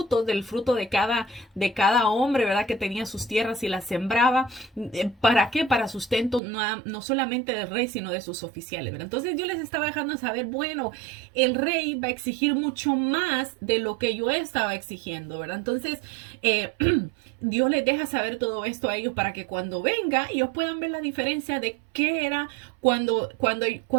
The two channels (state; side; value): drops out; left; at 6.4 s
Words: del fruto de cada hombre, ¿verdad? Que tenía sus tierras y las sembraba. ¿Para qué? Para sustento no solamente del rey, sino de sus oficiales, ¿verdad? Entonces yo les estaba dejando saber, bueno, el rey va a exigir mucho más de lo que yo estaba exigiendo, ¿verdad? Entonces, Dios les deja saber todo esto a ellos para que cuando venga, ellos puedan ver la diferencia de qué era cuando